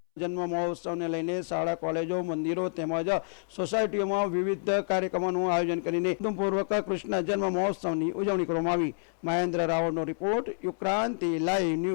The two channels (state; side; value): silent; right; 59 dB below the other